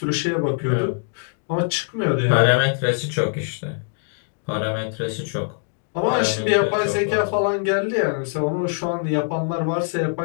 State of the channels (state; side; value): silent; right; 64 dB below the other